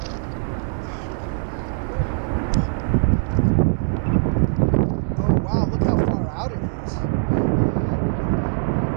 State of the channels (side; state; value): left; silent; digital silence